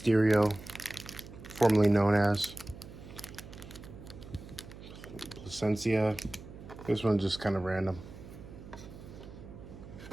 formerly known as Placencia. This one's just kind of random.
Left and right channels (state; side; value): noise; right; hum, 15 dB below the sound